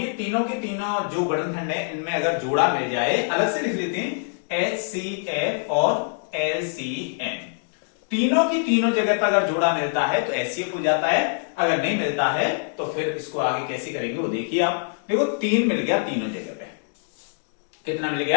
तीनों के तीनों जो गुणनखंड है इनमें अगर जोड़ा मिल जाए, अलग से लिख लेते हैं HCF और LCM, तीनों की तीनों जगह पर अगर जोड़ा मिलता है तो एचसीएफ हो जाता है। अगर नहीं मिलता है तो फिर इसको आगे कैसे करेंगे वो देखिए आप। देखो 3 मिल गया तीनों जगह पे, कितना मिल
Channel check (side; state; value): right; silent; digital silence